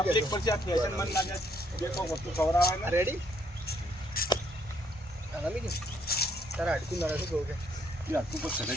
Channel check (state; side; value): normal; both; correlation 0.69